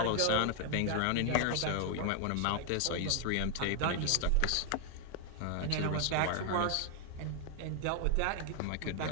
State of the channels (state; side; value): different; both; correlation 0.00